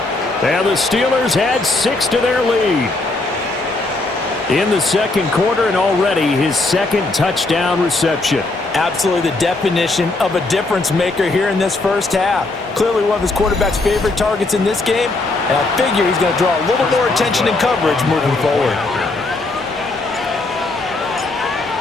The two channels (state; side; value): quieter; right; 3.2 dB